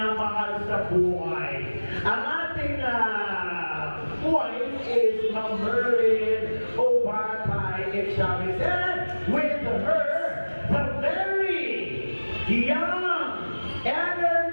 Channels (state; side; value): inverted; both; correlation -1.00